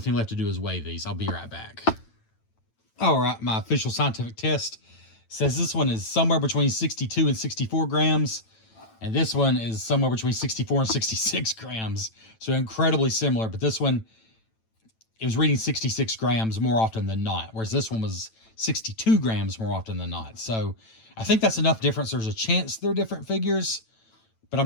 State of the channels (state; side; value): late; right; 9.0 ms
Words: left to do is weigh these. I'll be right back. All right, my official scientific test says this one is somewhere between 62 and 64 grams, and this one is somewhere between 64 and 66 grams. So incredibly similar, but this one, it was reading 66 grams more often than not, whereas this one was 62 grams more often than not. So I think that's enough difference. There's a chance they're different figures, but